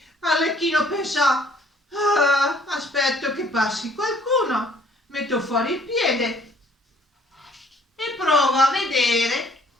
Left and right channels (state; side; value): normal; both; correlation 0.60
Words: Arlecchino pensò, aspetto che passi qualcuno, metto fuori il piede e provo a vedere